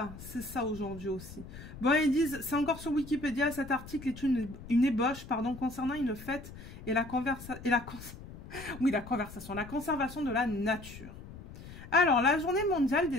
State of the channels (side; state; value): left; noise; rumble, 15 dB below the sound